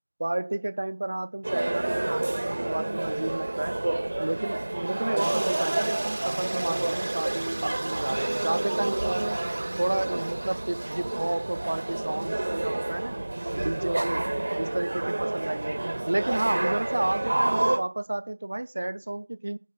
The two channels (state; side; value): inverted; both; correlation -1.00